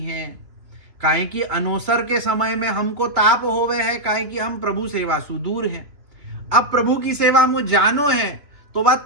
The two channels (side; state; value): left; late; 3.2 ms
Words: हैं। काहे कि अनोसर के समय में हमको ताप होवे है, काहे कि हम प्रभु सेवा सु दूर हैं। अब प्रभु की सेवा में जानो है तो वह